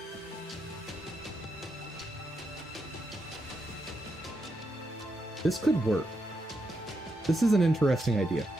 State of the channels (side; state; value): both; normal; correlation 0.83